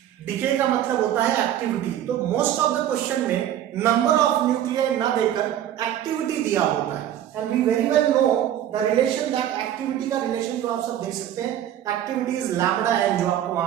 डिके का मतलब होता है एक्टिविटी। तो मोस्ट ऑफ द क्वेश्चन में नंबर ऑफ न्यूक्लियाई ना देकर एक्टिविटी दिया होता है। And we very well know the relation, that activity का रिलेशन जो आप सब देख सकते हैं, एक्टिविटी इज लैम्बडा एन, जो आपको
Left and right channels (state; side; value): quieter; left; 11.2 dB